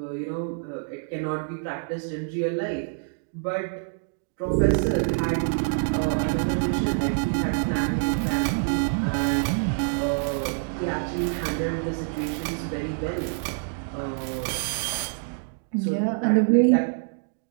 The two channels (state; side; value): silent; left; 61 dB below the other